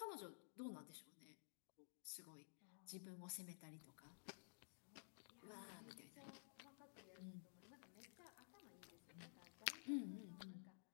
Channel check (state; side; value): silent; right; digital silence